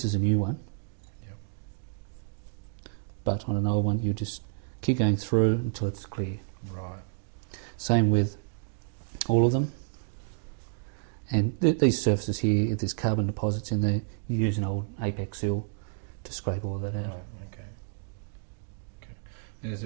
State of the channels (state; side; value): silent; left; digital silence